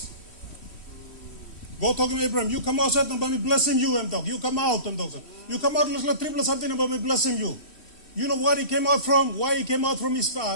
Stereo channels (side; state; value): right; late; 3.1 ms